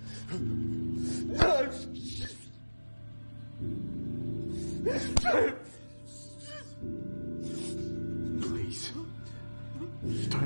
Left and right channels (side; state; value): both; inverted; correlation -1.00